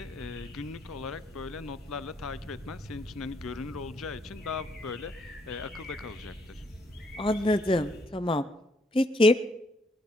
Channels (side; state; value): both; normal; correlation 0.71